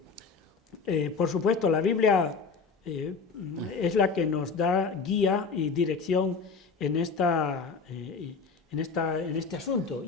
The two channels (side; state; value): right; quieter; 4.9 dB